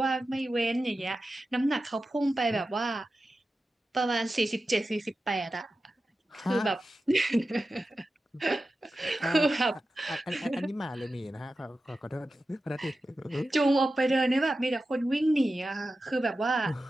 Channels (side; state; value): both; normal; correlation 0.93